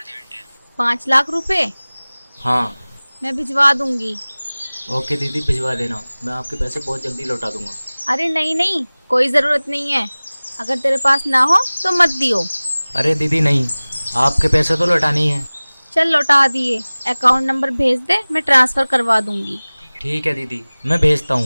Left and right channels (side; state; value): both; inverted; correlation -1.00